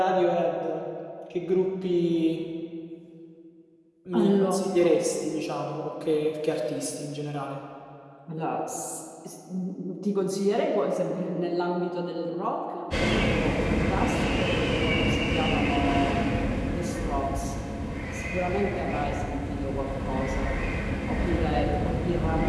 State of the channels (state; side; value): identical; both; correlation 1.00